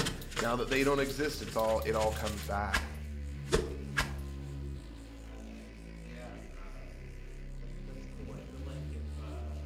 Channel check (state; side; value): identical; both; correlation 1.00